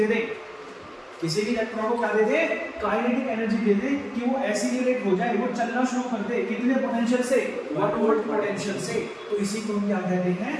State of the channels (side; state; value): both; identical; correlation 1.00